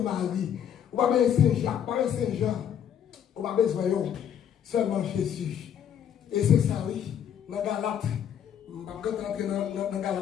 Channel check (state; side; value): quieter; right; 9.1 dB